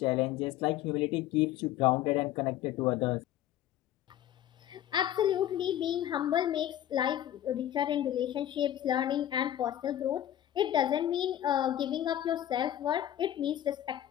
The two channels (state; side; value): quieter; right; 11.9 dB